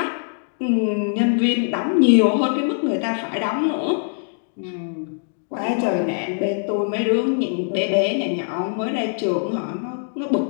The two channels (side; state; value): right; silent; digital silence